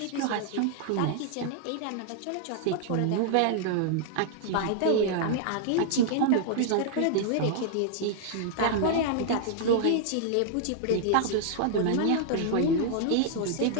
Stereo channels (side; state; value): both; different; correlation -0.01